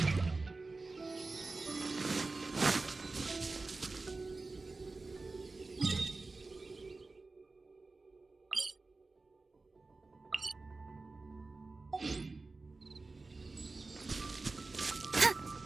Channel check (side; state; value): left; quieter; 3.6 dB